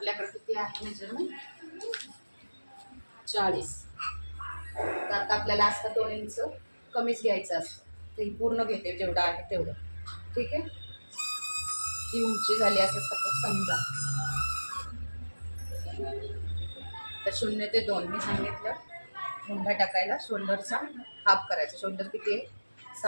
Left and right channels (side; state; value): both; inverted; correlation -1.00